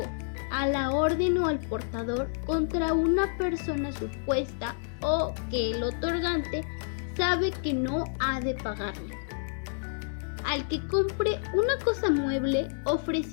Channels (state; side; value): silent; right; digital silence